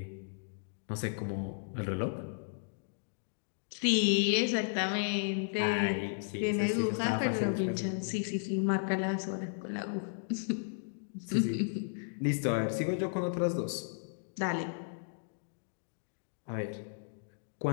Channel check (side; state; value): right; silent; digital silence